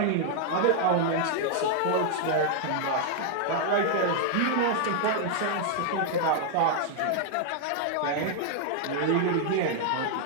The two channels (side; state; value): both; different; correlation -0.01